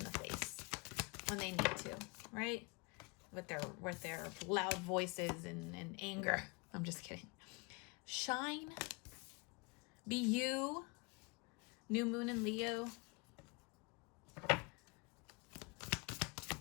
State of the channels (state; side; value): quieter; right; 29.5 dB